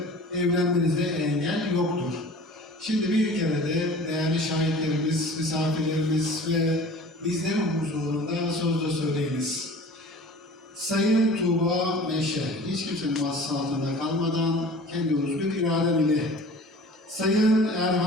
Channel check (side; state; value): both; normal; correlation 0.43